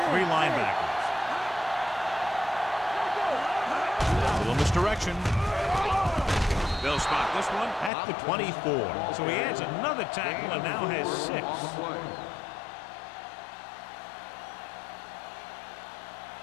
3 linebackers. A little misdirection. They'll spot this one at the 24. So he adds another tackle and now has 6.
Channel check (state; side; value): drops out; right; at 7.9 s